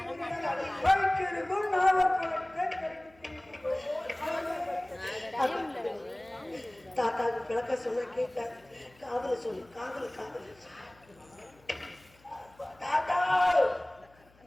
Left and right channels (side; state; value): left; noise; hum, 29 dB below the sound